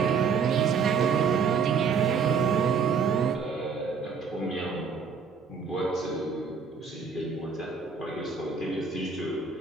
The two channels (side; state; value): left; quieter; 5.7 dB